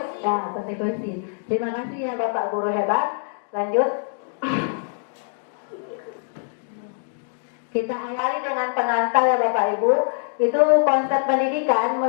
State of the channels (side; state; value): right; silent; digital silence